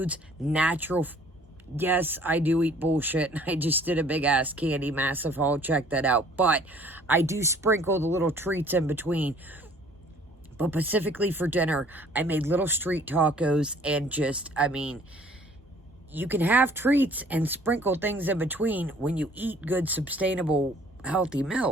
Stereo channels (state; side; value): normal; both; correlation 0.55